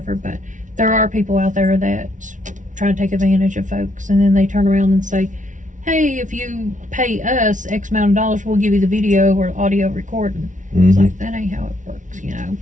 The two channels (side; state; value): left; late; 0.37 ms